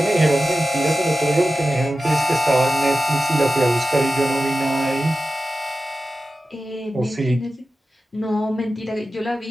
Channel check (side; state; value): both; normal; correlation 0.93